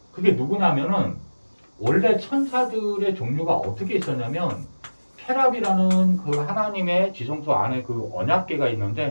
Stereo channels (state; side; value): inverted; both; correlation -1.00